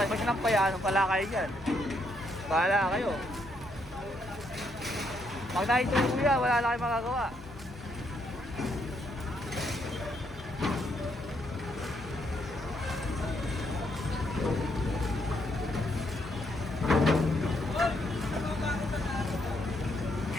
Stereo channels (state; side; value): normal; both; correlation 0.75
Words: sinampay, pala kayo dyan. Bahala kayo. Pag nakita yung kuya, wala na kayo magagawa.